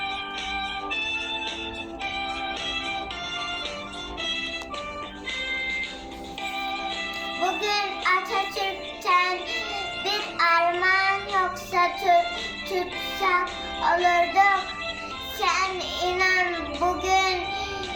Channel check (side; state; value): both; identical; correlation 1.00